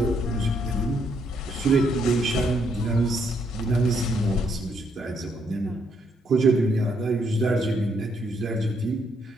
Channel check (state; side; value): normal; both; correlation 0.73